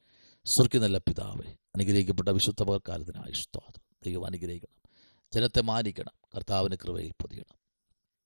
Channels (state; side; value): inverted; both; correlation -1.00